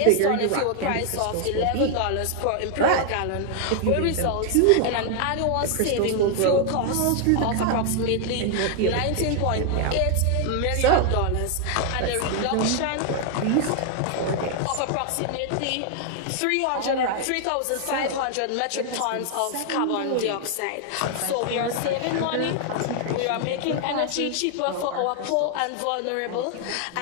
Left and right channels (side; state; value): both; different; correlation 0.00